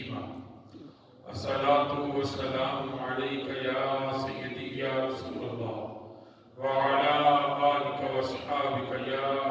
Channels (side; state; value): both; identical; correlation 1.00